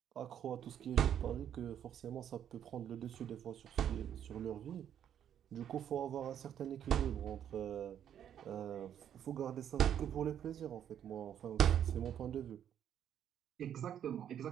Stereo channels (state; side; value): quieter; left; 9.7 dB